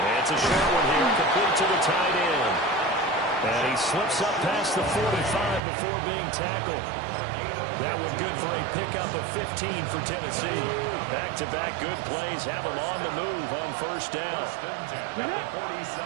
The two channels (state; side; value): drops out; left; at 5.6 s